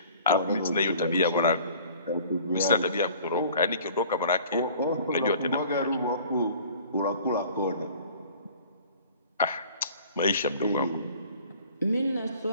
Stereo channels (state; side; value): inverted; both; correlation -0.49